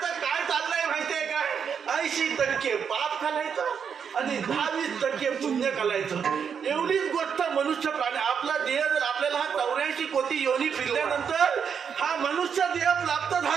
काय चाललंय माहितीये काय? 80% पाप घालायचं आणि 20% पुण्य घालायचं. एवढीच गोष्ट मनुष्य प्राणी. आपला देह जर आपल्याला हा 84 कोटी योनी फिरल्यानंतर हा मनुष्य देह प्राप्त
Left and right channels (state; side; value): quieter; left; 7.0 dB